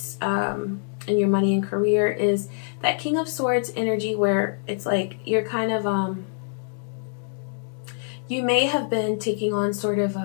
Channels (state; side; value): silent; right; digital silence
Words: in your money and career, is that King of Swords energy, where it's like you're kind of, you may have been taking on sort of